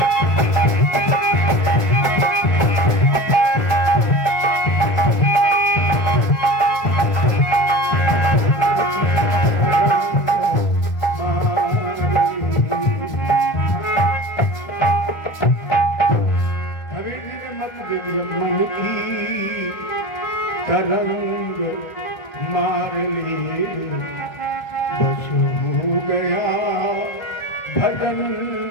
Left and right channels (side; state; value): right; late; 1.7 ms